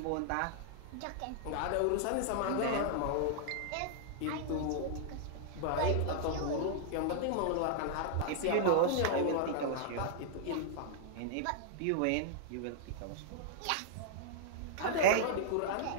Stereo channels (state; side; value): different; both; correlation -0.01